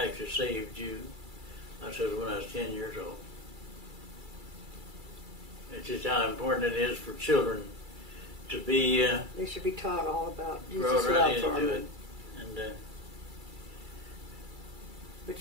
saved you? I said, when I was 10 years old. It's just how important it is for children to be They should be taught all about brought Jesus' right love for into it. them. And But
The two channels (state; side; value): late; left; 2.3 ms